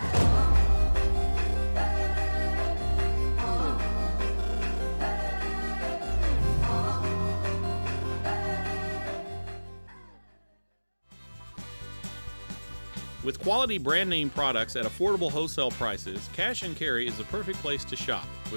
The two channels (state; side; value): inverted; both; correlation -1.00